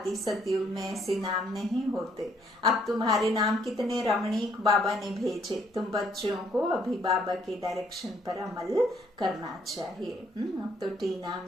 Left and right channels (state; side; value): normal; both; correlation 0.66